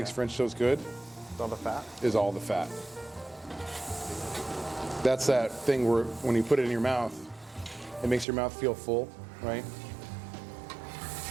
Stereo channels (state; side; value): drops out; left; at 8.2 s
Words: French toast good It's all the fat? is all the fat. That's that thing where when you put it in your mouth, it makes your mouth feel full, right?